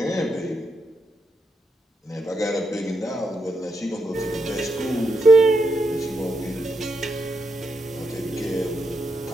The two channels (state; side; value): normal; both; correlation 0.82